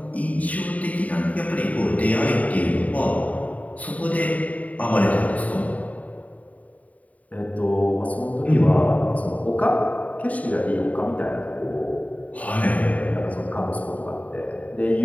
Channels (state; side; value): late; right; 0.071 ms